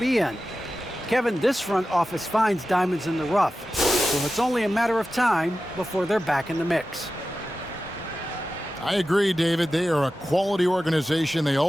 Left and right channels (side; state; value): both; normal; correlation 0.93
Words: in. Kevin, this front office finds diamonds in the rough, so it's only a matter of time before they're back in the mix. I agree, David. They are a quality organization. They